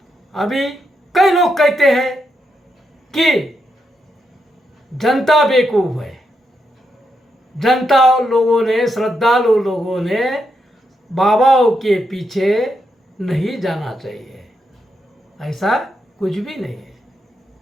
अभी कई लोग कहते हैं कि जनता बेवकूफ है, जनता लोगों ने, श्रद्धालु लोगों ने बाबाओं के पीछे नहीं जाना चाहिए। ऐसा कुछ भी नहीं है,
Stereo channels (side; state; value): both; normal; correlation 0.82